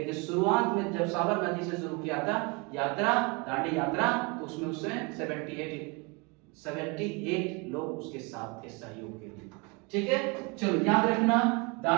शुरुआत में जब साबरमती से शुरू किया था यात्रा, दांडी यात्रा, तो उसमें 78 लोग उसके साथ थे सहयोग के लिए। ठीक है, चलो याद रखना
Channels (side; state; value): left; quieter; 29.1 dB